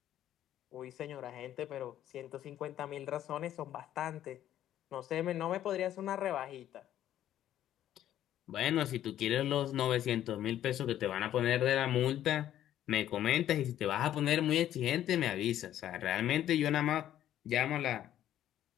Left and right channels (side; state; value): right; quieter; 11.8 dB